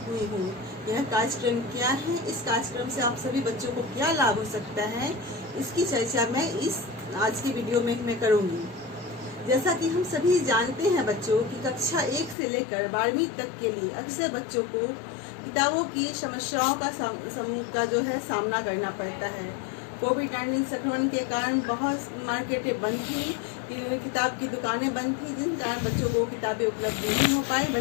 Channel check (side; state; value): right; drops out; at 12.4 s